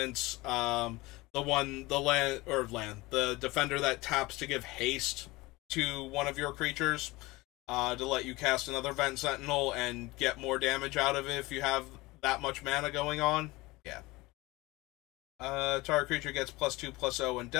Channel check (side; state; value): right; quieter; 21.5 dB